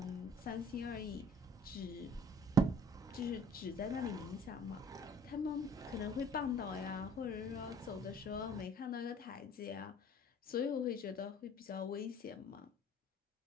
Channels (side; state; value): both; normal; correlation 0.54